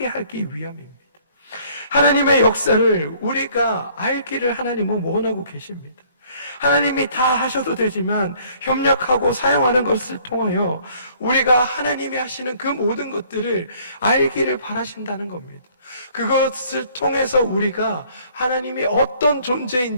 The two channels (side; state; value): both; inverted; correlation -0.59